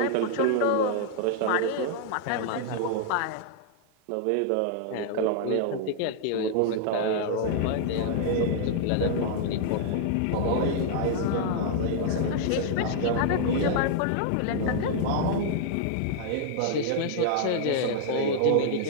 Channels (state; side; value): different; both; correlation -0.01